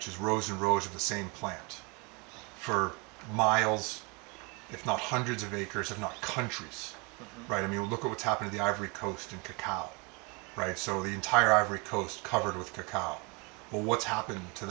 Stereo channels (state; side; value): quieter; left; 29.9 dB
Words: is rows and rows of the same plant for miles, if not hundreds of acres, if not countries. Right? I mean, look at what's happened to the Ivory Coast and cacao. Right? So the entire Ivory Coast covered with cacao. Well, what's happened to